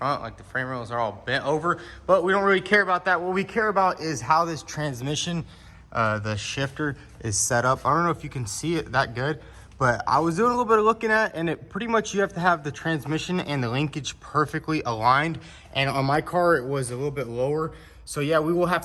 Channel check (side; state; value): both; identical; correlation 1.00